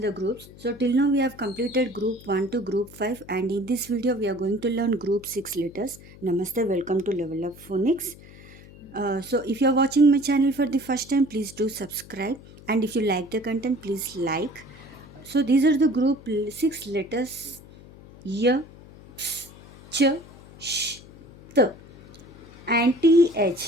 groups. So till now we have completed group 1 to group 5, and in this video we are going to learn group 6 letters. Namaste, welcome to Level Up Phonics. So if you are watching my channel for the first time, please do subscribe, and if you like the content, please like. So these are the group 6 letters: y, ps, ch, sh, t, and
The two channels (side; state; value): left; noise; hum, 20 dB below the sound